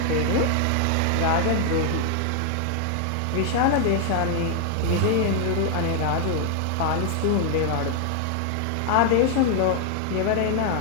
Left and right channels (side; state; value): both; different; correlation 0.00